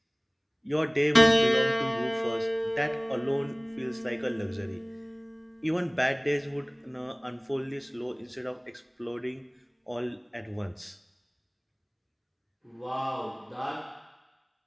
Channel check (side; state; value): both; identical; correlation 1.00